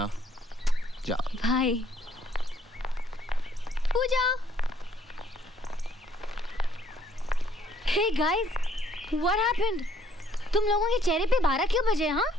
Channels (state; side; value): normal; both; correlation 0.65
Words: जाओ। Bye. Pooja. Hey guys, what happened? तुम लोगों के चेहरे पे 12 क्यों बजे? हाँ?